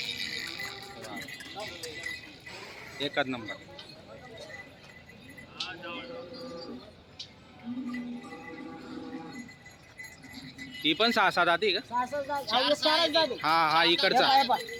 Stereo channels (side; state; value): both; identical; correlation 1.00